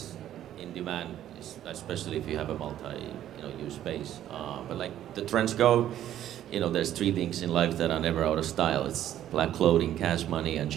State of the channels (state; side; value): quieter; left; 11.8 dB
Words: in demand, especially if you have a multi-use space. But like the trends go, you know, there's 3 things in life that are never out of style. It's black clothing, cash money, and